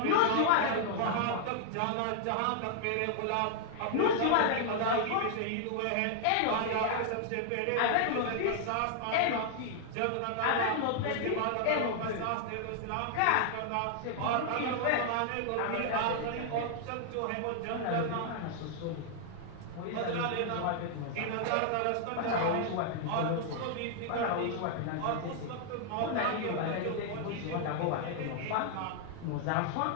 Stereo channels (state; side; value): different; both; correlation 0.00